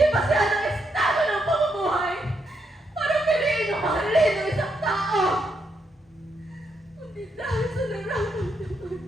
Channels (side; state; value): both; normal; correlation 0.79